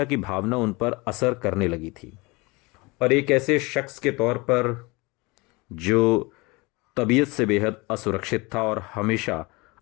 की भावना उन पर असर करने लगी थी और एक ऐसे शख्स के तौर पर जो तबीयत से बेहद असुरक्षित था और हमेशा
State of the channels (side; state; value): right; quieter; 25.3 dB